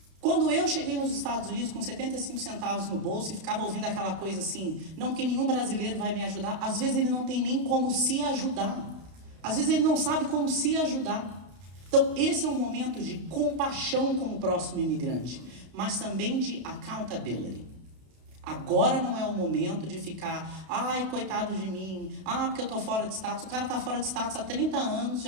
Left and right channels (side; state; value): left; late; 32 ms